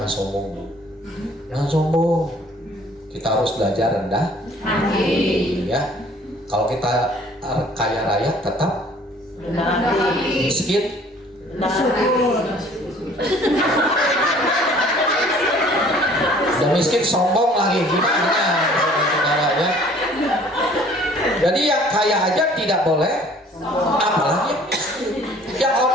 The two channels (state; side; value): normal; both; correlation 0.54